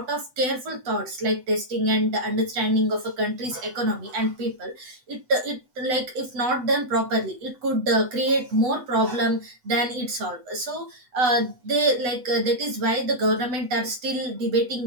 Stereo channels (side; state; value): left; late; 8.0 ms